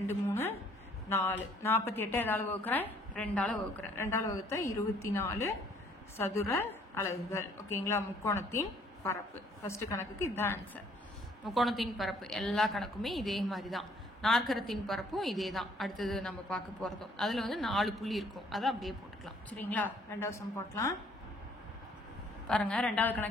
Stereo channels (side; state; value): both; normal; correlation 0.61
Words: 3 4, 48 எதால வகுக்கிறேன்? 2ஆல வகுக்கிறேன். 2ஆல வகுத்தா 24 சதுர அலகுகள். ஓகேங்களா? முக்கோணத்தின் பரப்பு. ஃபர்ஸ்ட் கணக்குக்கு இதுதான் ஆன்சர். முக்கோணத்தின் பரப்பு எல்லா கணக்குமே இதே மாதிரி தான். நாற்கரத்தின் பரப்பும் இதே தான் அடுத்தது நம்ம பார்க்க போகிறதும். அதில் வந்து 4 புள்ளி இருக்கும், அதை அப்படியே போட்டுக்கலாம். சரிங்களா? ரெண்டாவது சம் போட்டலாம் பாருங்க. ரெண்டாவது